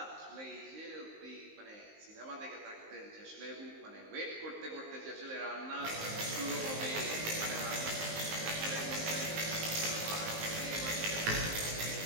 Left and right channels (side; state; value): left; late; 19 ms